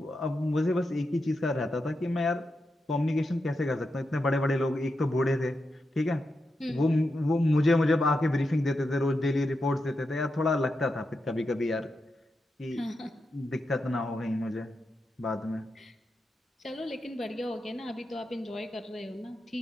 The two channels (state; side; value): normal; both; correlation 0.87